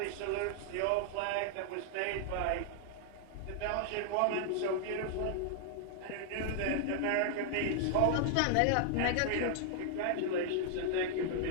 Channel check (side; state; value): both; different; correlation -0.01